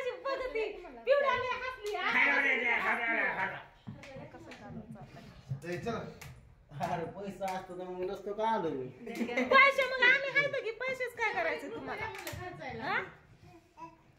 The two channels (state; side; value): identical; both; correlation 1.00